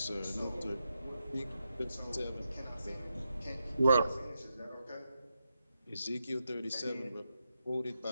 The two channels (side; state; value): both; inverted; correlation -0.86